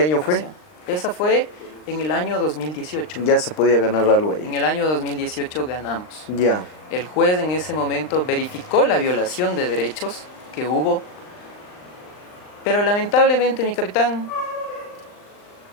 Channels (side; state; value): right; late; 39 ms